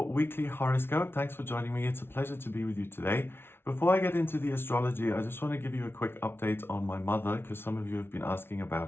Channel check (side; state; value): right; late; 0.11 ms